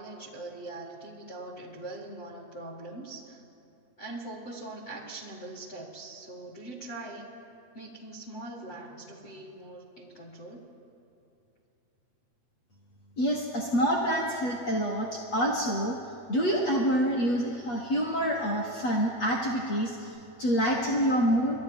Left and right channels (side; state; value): right; late; 8.3 ms